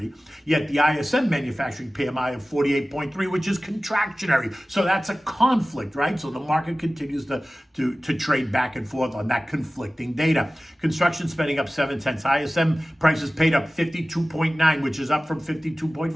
yet the ISM manufacturing PMI of 48.3, which is contractionary. So that's a conflict, right? So the market continues to trade back and forth on that conflicting data. Construction spending up 0.7. ISM prices paid up 52.9, which is up from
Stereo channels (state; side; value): normal; both; correlation 0.97